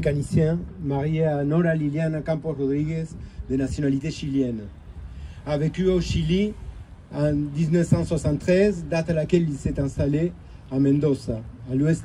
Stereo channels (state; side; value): identical; both; correlation 1.00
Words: marié à Nora Liliana Campos Rodriguez, de nationalité chilienne. A vécu au Chili en 1973, date à laquelle il s'est installé à Mendoza, à l'ouest